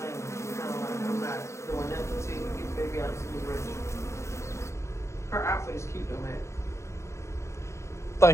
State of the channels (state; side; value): late; right; 0.14 ms